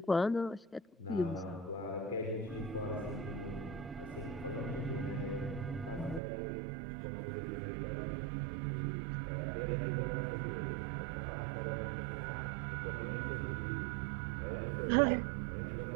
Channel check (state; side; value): drops out; left; at 6.2 s